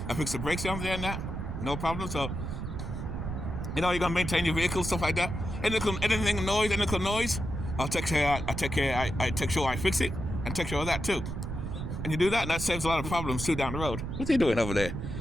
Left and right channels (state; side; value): noise; right; rumble, 5 dB below the sound